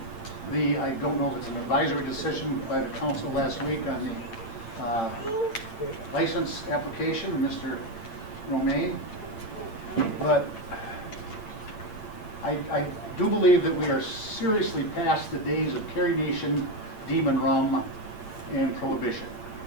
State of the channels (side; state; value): right; late; 8.9 ms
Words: I don't know if it's an advisory decision by the council last week on the license application of Mr. Romaine, but I do believe that we are seriously past the days of Carrie Nation, Demon Rum, and Prohibition.